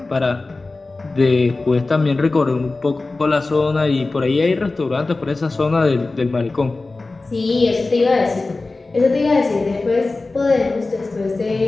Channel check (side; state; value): right; quieter; 3.4 dB